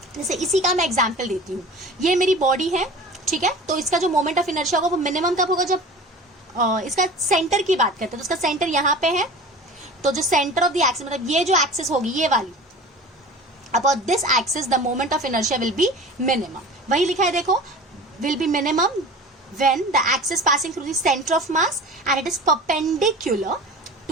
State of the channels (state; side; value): normal; both; correlation 0.39